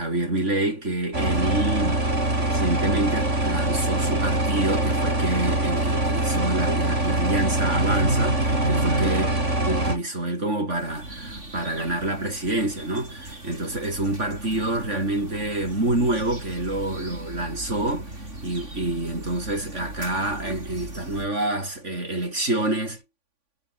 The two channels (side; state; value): left; late; 3.5 ms